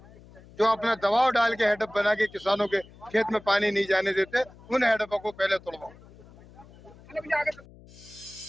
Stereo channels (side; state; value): left; noise; hum, 22 dB below the sound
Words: जो अपना दबाव डाल के हेडअप बना के किसानों के खेत में पानी नहीं जाने देते, उन हेडअपों को पहले तोड़वाऊंगा।